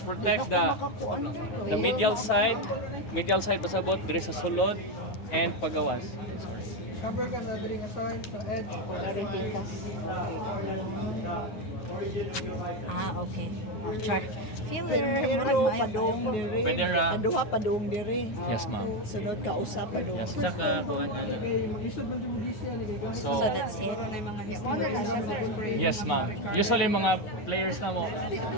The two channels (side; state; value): right; late; 9.3 ms